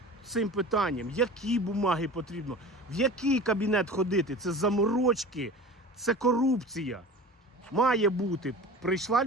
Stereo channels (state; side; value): normal; both; correlation 0.36